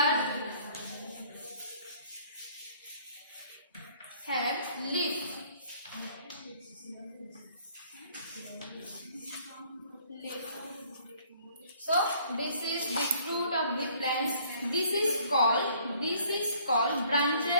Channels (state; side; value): inverted; both; correlation -0.59